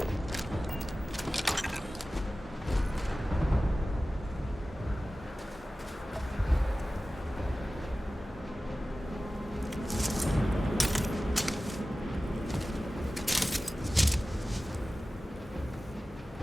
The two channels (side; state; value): both; normal; correlation 0.96